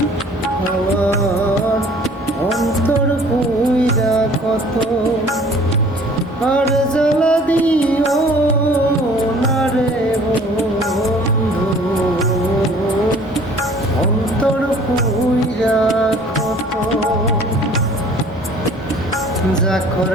আমার অন্তর পুইরা কত। আর জ্বালা দিও না রে বন্ধু, অন্তর পুইরা কত। যা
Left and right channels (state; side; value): normal; both; correlation 0.52